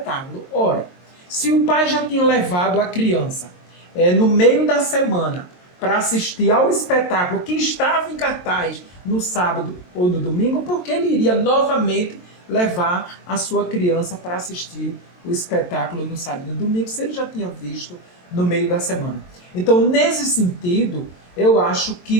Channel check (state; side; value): late; right; 22 ms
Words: Ora, se o pai já tinha levado a criança no meio da semana para assistir ao espetáculo que estava em cartaz no sábado ou no domingo, porque ele iria novamente levar a sua criança para assistir o espetáculo no sábado e no domingo, se ele já tinha visto no meio da semana. Então, nesse sentido, eu acho que